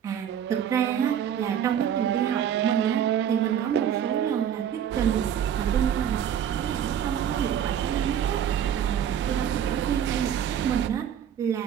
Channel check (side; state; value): left; quieter; 9.3 dB